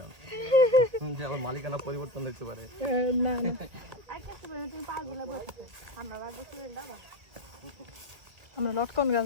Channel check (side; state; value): left; late; 1.8 ms